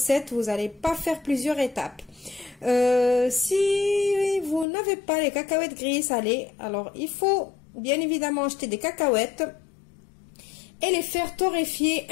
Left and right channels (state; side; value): drops out; right; at 4.7 s